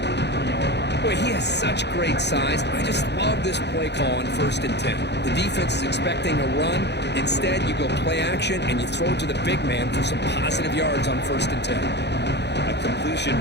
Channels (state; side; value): late; right; 0.50 ms